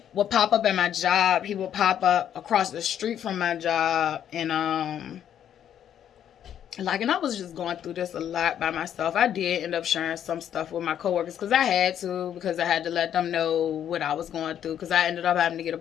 would pop up at my job, he would pop up across the street from my job, and and I was just going through this a lot by myself. I did end up sharing some stuff with my coworkers because I had to let them know what I was going through, because I ended up having to get a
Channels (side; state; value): right; quieter; 9.8 dB